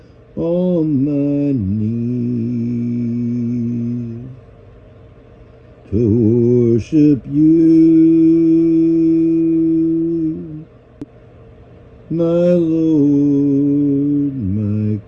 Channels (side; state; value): both; identical; correlation 1.00